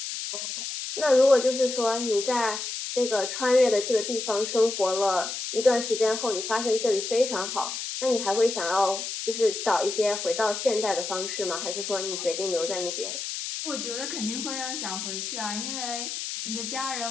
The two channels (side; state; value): left; noise; hiss, 5 dB below the sound